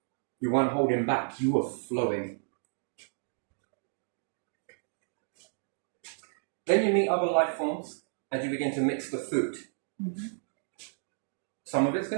You weren't holding back. You were flowing. Then you meet other life forms and you begin to mix the food. Mm-hmm. Some of it's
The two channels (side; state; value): left; silent; digital silence